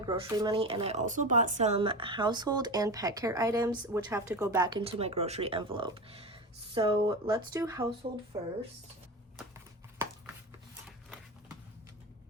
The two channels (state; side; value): normal; both; correlation 0.25